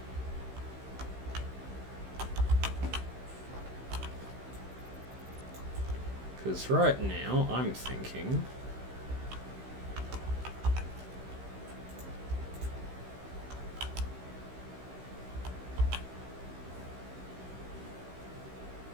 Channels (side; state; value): left; late; 16 ms